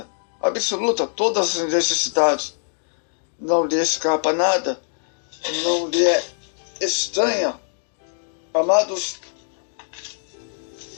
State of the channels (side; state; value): right; silent; digital silence